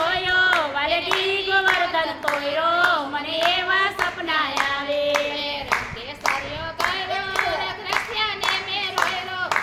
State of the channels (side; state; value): both; identical; correlation 1.00